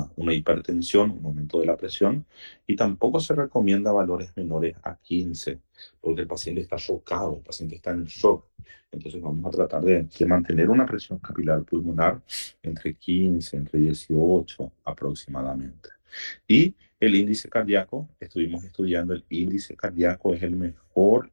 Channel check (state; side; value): inverted; both; correlation -1.00